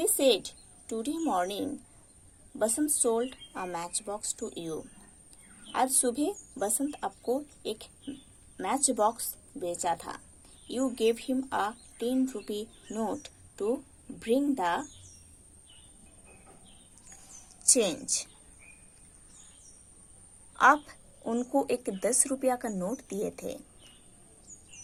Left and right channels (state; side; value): identical; both; correlation 1.00